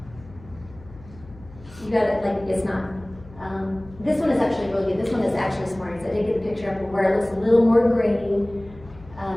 You got it, like it's not. This one is actually really good. This one is actually Smarties. I did get the picture up where it looks a little more grainy.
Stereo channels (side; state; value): left; noise; hum, 21 dB below the sound